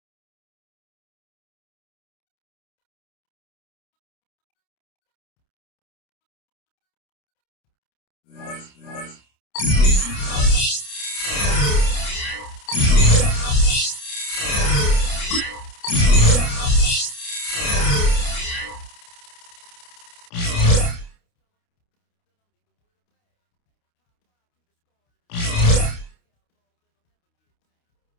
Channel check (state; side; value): late; right; 29 ms